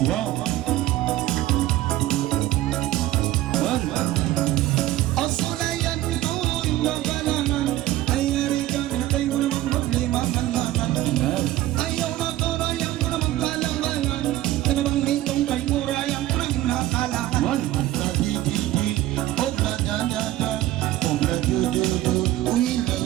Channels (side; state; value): left; quieter; 15.1 dB